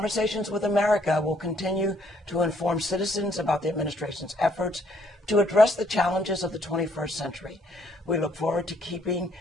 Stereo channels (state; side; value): normal; both; correlation 0.67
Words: with America will continue to inform citizens about the administration's efforts to address the challenges of the 21st century. We look forward to keeping